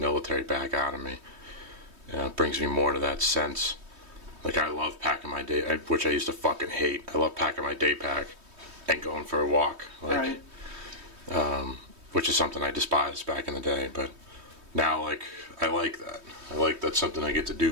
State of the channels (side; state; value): left; late; 3.2 ms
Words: back out of me. It brings me more to that sense. Like I love packing my day, which I used to fucking hate. I love packing my day pack and going for a walk. Like, right. Which is something I despised back in the day, but now like I like that. I like that's something I get to